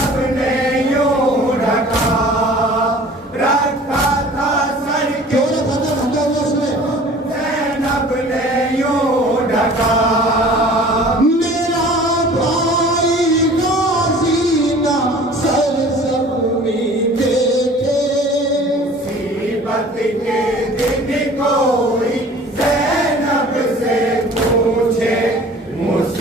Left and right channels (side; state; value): both; normal; correlation 0.46